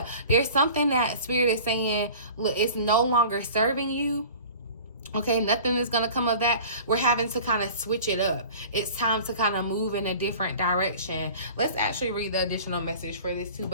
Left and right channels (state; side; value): inverted; both; correlation -0.42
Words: there's something that Spirit is saying, look, it's no longer serving you. Okay, nothing is going to come of that. We're having to kind of switch it up. It's time to kind of move in a different direction. Let's actually read the additional message for this too.